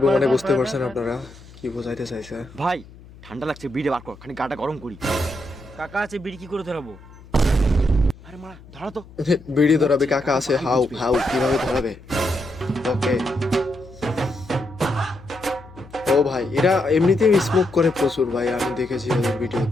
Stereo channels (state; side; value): noise; left; hum, 21 dB below the sound